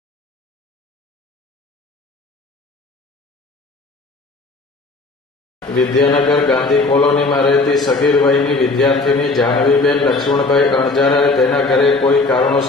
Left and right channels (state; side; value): quieter; right; 3.5 dB